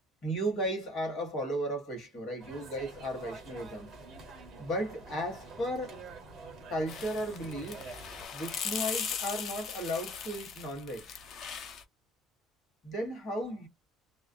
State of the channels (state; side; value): normal; both; correlation 0.53